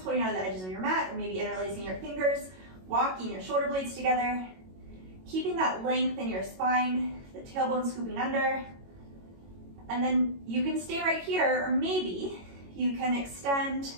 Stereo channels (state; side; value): late; left; 22 ms